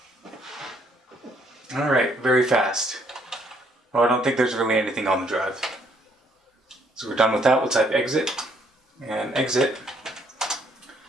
Alright, very fast. Well, I don't think there's really anything on the drive. So we're done with that. We'll type exit and exit.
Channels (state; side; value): normal; both; correlation 0.67